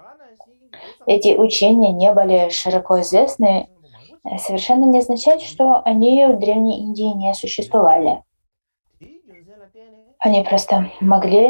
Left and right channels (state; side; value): inverted; both; correlation -1.00